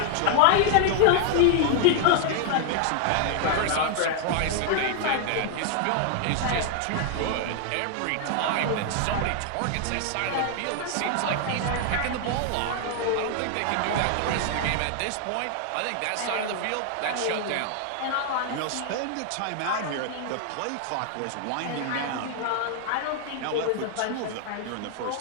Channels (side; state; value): both; different; correlation 0.00